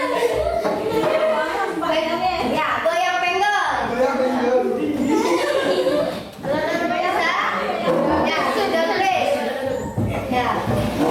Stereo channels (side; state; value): both; identical; correlation 1.00